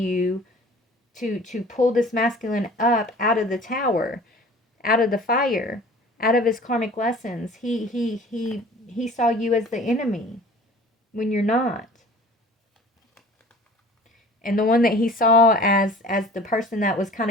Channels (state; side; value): normal; both; correlation 0.46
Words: to pull this masculine up out of the tower, out of the fire, out of his karmic lessons. He saw you as the enemy when you're not. And the one that he saw as the person that was kind